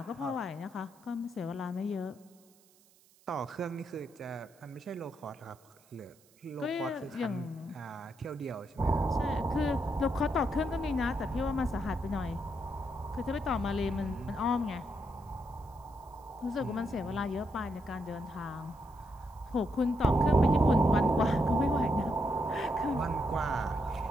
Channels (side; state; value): right; noise; hiss, 30 dB below the sound